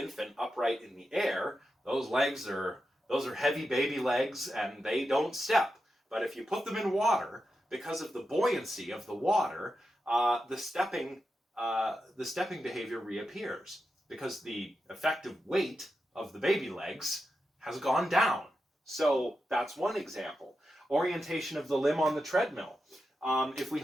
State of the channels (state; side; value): normal; both; correlation 0.89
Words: upright in the air, those are heavy baby legs and they don't step. But if you put them in water, because of the buoyancy of the water, the stepping behavior reappears because the effective weight of the baby legs has gone down. So that's one example. Orientation of the limb on the treadmill. If we